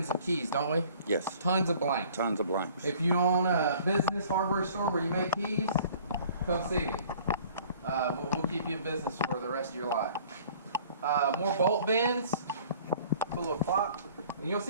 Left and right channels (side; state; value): both; inverted; correlation -0.52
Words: of keys, don't we? Yes. Tons of blanks. Tons of blanks. If you own a business hardware store where you make keys, come see me. We'll keep you in business for the rest of your life. More bolt bends. Put a little clock. And you'll